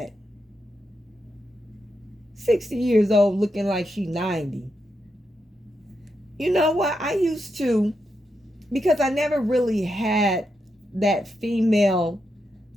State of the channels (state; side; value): normal; both; correlation 0.84